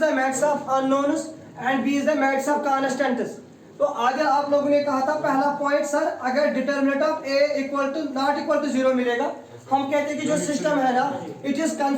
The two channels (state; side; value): identical; both; correlation 1.00